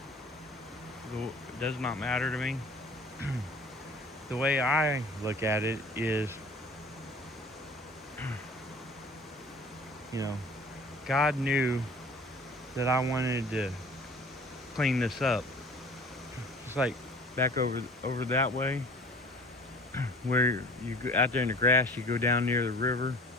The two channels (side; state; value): both; normal; correlation 0.46